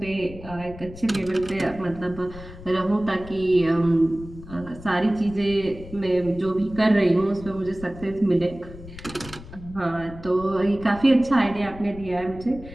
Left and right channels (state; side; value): noise; left; rumble, 16 dB below the sound